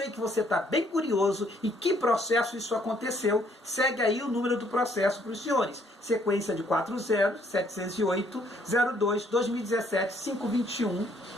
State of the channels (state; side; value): normal; both; correlation 0.66